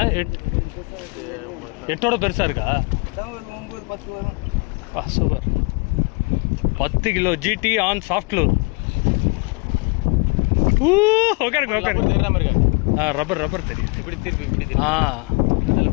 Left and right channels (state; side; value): quieter; right; 29.1 dB